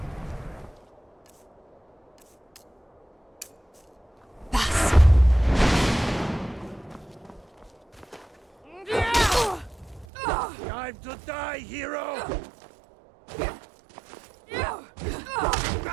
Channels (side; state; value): left; drops out; at 10.1 s